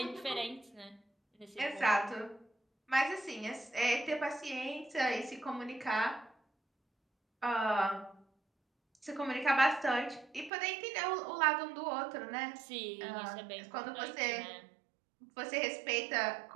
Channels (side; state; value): left; drops out; at 10.5 s